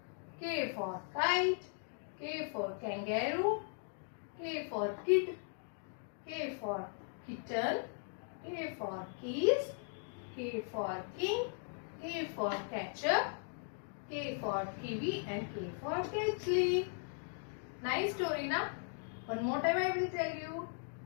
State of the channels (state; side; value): silent; right; 52 dB below the other